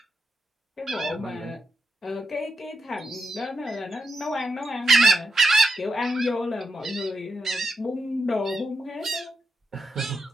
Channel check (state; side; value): normal; both; correlation 0.85